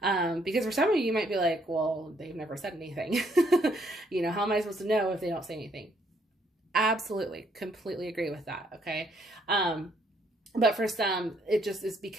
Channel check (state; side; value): normal; both; correlation 0.70